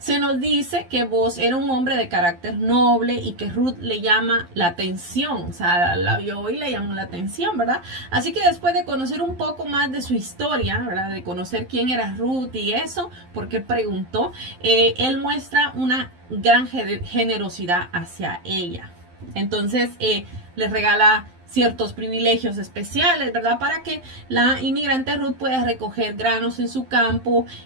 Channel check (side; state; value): left; late; 12 ms